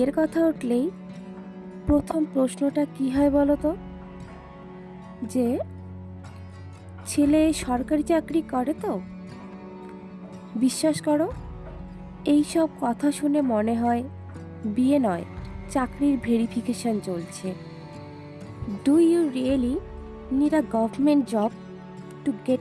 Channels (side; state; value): both; identical; correlation 1.00